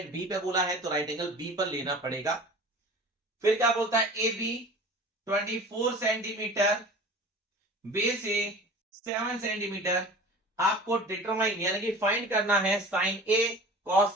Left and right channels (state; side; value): normal; both; correlation 0.40